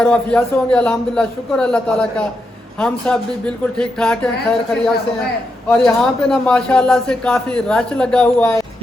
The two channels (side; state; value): both; normal; correlation 0.84